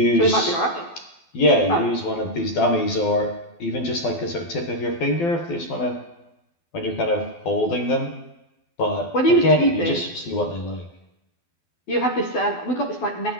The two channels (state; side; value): late; right; 12 ms